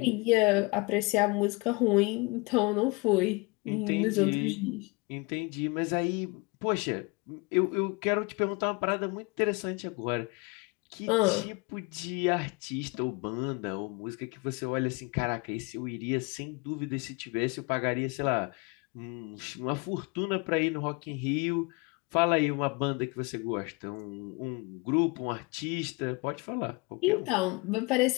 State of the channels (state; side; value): quieter; right; 27.1 dB